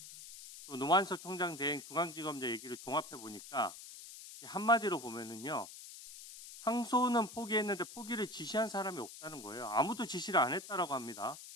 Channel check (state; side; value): noise; left; hiss, 14 dB below the sound